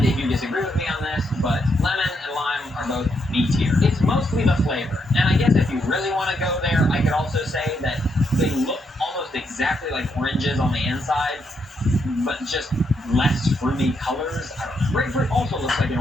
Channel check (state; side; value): normal; both; correlation 0.78